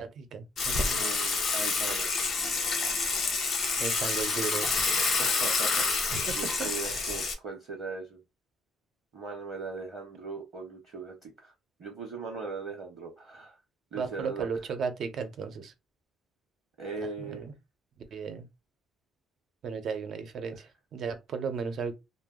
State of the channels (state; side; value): normal; both; correlation 0.64